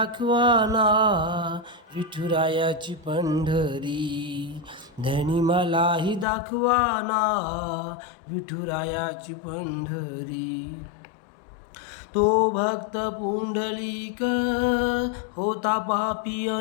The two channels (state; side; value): drops out; right; at 6.2 s